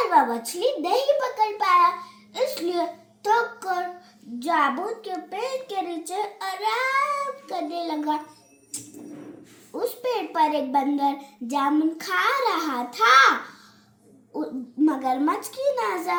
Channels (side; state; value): both; identical; correlation 1.00